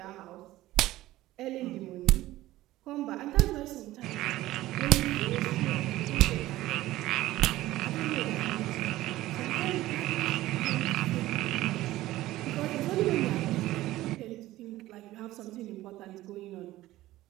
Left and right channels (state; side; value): quieter; left; 16.3 dB